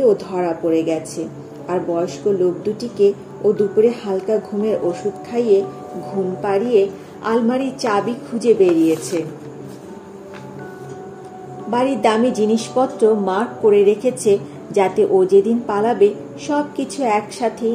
ও ধরা পড়ে গেছে। আর বয়স্ক লোক দুটিকে ও দুপুরে হালকা ঘুমের ওষুধ খাইয়ে ঘুম পাড়িয়ে আলমারির চাবি খুঁজে বেরিয়েছে। বাড়ির দামি জিনিসপত্র মার্ক করে রেখেছে যাতে ও যেদিন পালাবে সবকিছু একসাথেই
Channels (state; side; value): identical; both; correlation 1.00